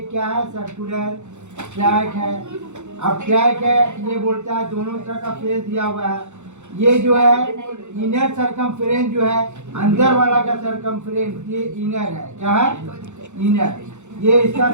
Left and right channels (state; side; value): late; left; 0.83 ms